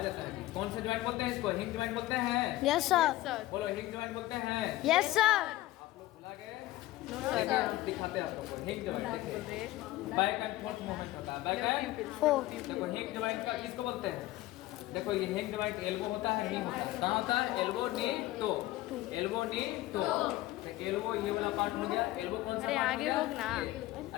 है। कौन से ज्वाइंट बोलते हैं इसको? हिंग ज्वाइंट बोलते हैं। Yes sir. बोलो हिंग ज्वाइंट बोलते हैं। Yes sir. आप लोग भुला गए? देखिए, दिखाते हैं आप लोगों को। हिंग ज्वाइंट देखिए बैक एंड फोर्थ मूवमेंट होता है। Back and fourth. देखो हिंग ज्वाइंट का किसको बोलते हैं? देखो ये हैंड जॉइंट एल्बो होता है, नी होता है। कहाँ होता है? Elbow, knee, toe. Elbow, knee, toe. तो एल्बो ये वाला पार्ट हो गया। एल्बो कौन सा अरे पार्ट हो आगे गया? होग ना। ये।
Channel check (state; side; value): quieter; right; 16.7 dB